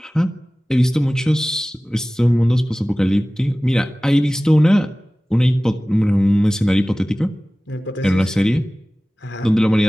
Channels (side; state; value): both; normal; correlation 0.97